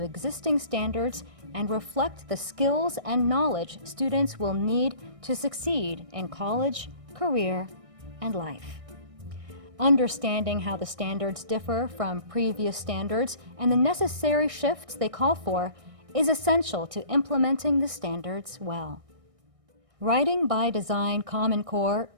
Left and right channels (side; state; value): left; late; 1.6 ms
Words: existing standards and reflect the skills and knowledge students will need to succeed in college, career, and life. Understanding how the standards differ from previous standards and the necessary shifts they call for is essential to implementing the standards well. Writing by Design Common Core